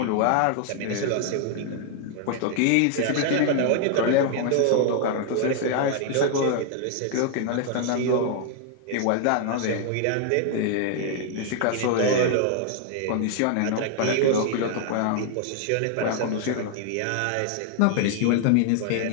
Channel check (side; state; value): both; different; correlation 0.00